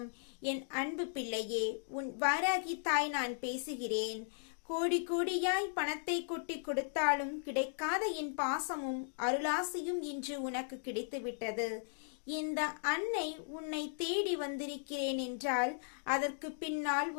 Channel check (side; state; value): right; silent; digital silence